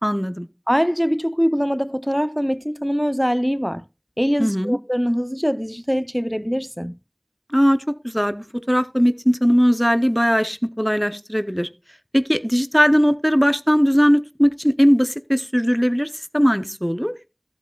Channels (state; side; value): identical; both; correlation 1.00